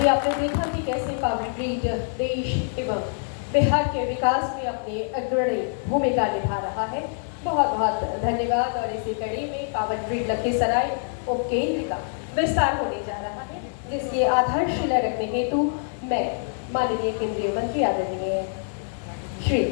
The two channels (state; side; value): silent; right; digital silence